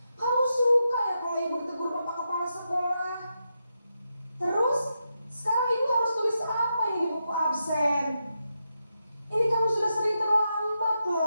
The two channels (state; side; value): inverted; both; correlation -0.86